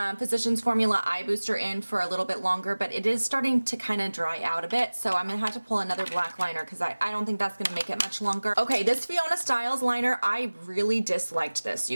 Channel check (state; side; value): inverted; both; correlation -1.00